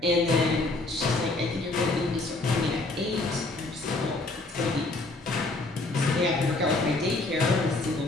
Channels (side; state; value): right; quieter; 3.0 dB